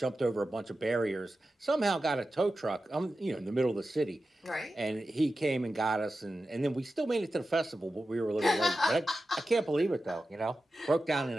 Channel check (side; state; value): both; normal; correlation 0.92